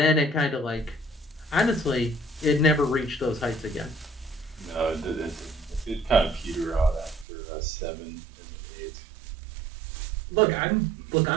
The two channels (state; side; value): drops out; left; at 7.2 s